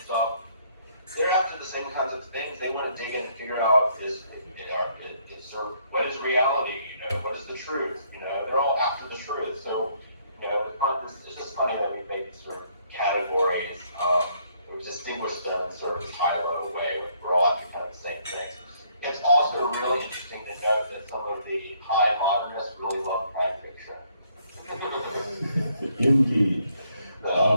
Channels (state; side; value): inverted; both; correlation -0.68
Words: stuff, they're after the same kinds of things. They want to dig in and figure out it's sort of, what is reality? What is the truth? They're all after the truth. So, it's just funny that we make these sort of categories. We distinguish them in sort of this high-level way. We're all after kind of the same things. It's also really interesting to note that some of the high modernists really love crime fiction. Indeed.